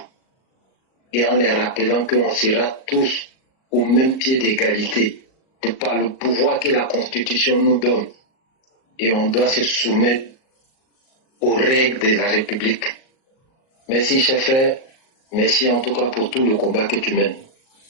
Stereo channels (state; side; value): late; right; 38 ms